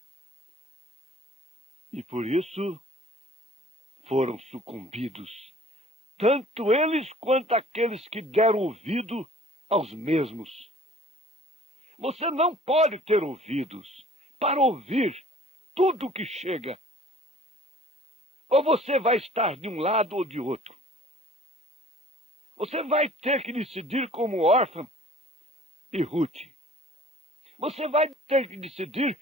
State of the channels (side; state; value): both; normal; correlation 0.51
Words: E por isso foram sucumbidos, tanto eles quanto aqueles que deram ouvido aos mesmos. Você não pode ter ouvidos para ouvir tudo o que chega. Ou você vai estar de um lado ou de outro. Você vai ter que decidir como órfã e Ruth. Você vai ter que decidir